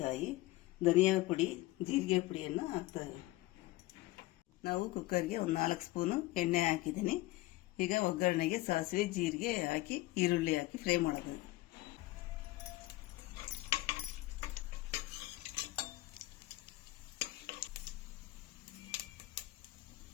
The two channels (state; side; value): quieter; right; 18.4 dB